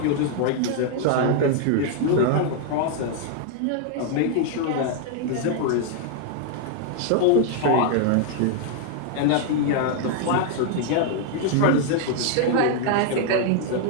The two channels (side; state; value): both; different; correlation 0.00